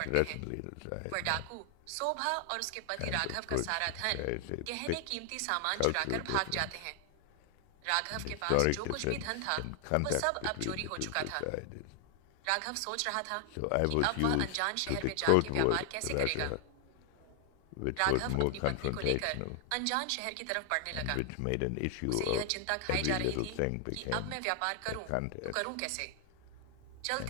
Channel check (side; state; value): both; different; correlation 0.00